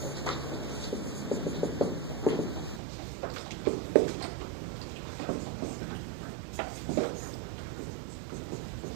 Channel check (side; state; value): left; drops out; at 2.8 s